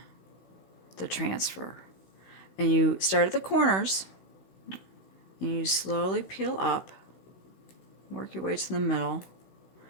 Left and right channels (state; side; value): late; right; 16 ms